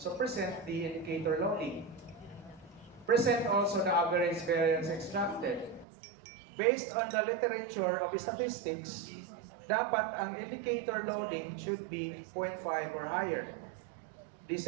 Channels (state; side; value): drops out; left; at 5.9 s